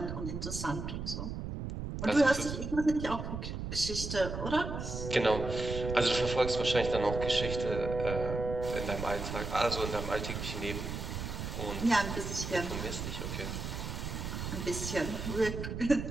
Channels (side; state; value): right; noise; rumble, 5 dB below the sound